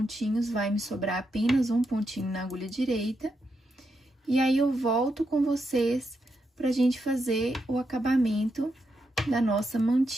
vai me sobrar apenas um pontinho na agulha direita. E aí, eu volto com vocês pra gente fazer o acabamento da nossa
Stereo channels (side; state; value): both; normal; correlation 0.83